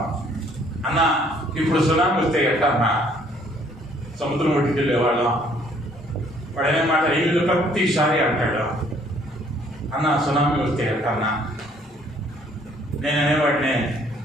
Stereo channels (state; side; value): normal; both; correlation 0.62